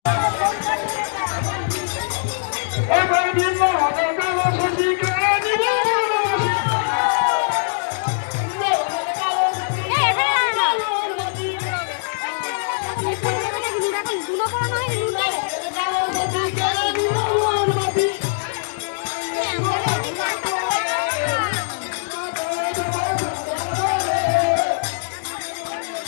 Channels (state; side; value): silent; right; digital silence